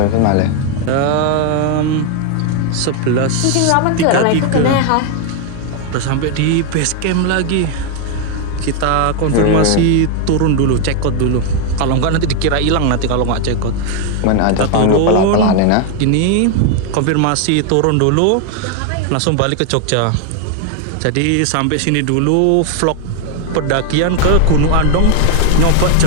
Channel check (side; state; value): both; different; correlation 0.01